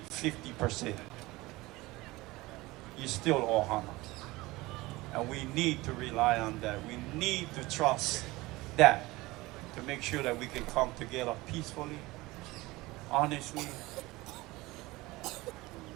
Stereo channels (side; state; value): left; quieter; 20.5 dB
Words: 50%. You still Ohana. And we need to rely on that. We need to trust that to make sure that we can come together peacefully, honestly,